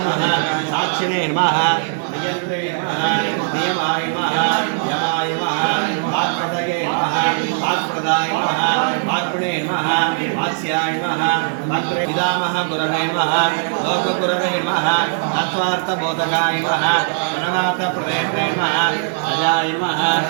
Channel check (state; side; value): silent; left; digital silence